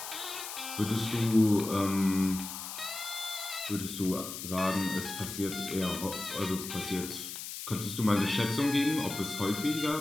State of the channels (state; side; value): noise; left; hiss, 8 dB below the sound